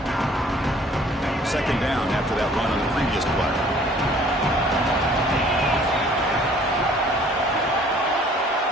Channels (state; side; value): normal; both; correlation 0.55